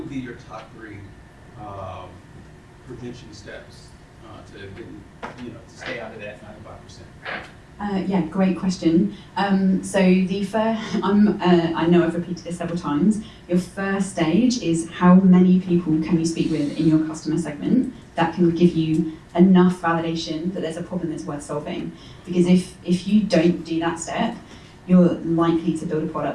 be your top 3 prevention steps to stay out of that 95%? Yeah, great question. So the first, I know I've repeated this several times. Your first stage is how many people can you speak with in your customer segment that can give you enough validation that there's a problem that's worth solving. Because if you don't do that step, you're likely to build a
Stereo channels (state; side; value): identical; both; correlation 1.00